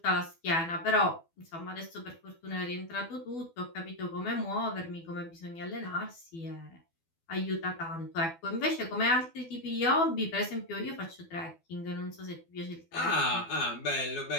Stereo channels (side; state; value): right; late; 12 ms